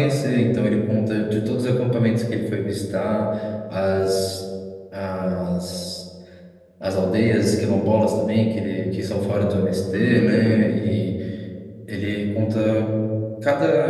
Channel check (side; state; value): both; identical; correlation 1.00